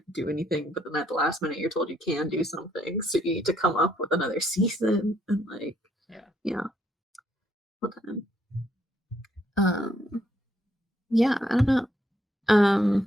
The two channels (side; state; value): both; normal; correlation 0.71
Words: do anything, but then at the last minute you're told you can do something. So you need to come up with another season and like Yeah. yeah. Well then. Yeah, I don't know.